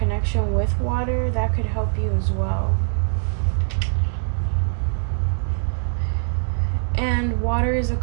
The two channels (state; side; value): silent; left; digital silence